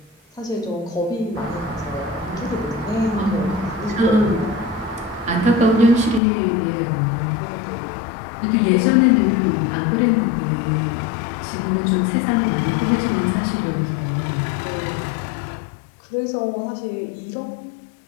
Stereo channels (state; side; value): drops out; right; at 6.2 s